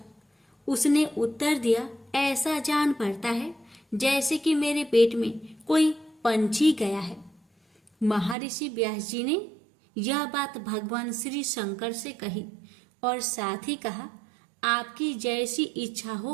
उसने उत्तर दिया, ऐसा जान पड़ता है जैसे कि मेरे पेट में कोई पंछी गया है। महर्षि व्यास जी ने यह बात भगवान श्री शंकर से कही और साथ ही कहा, आपकी जैसी इच्छा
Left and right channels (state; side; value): drops out; left; at 8.3 s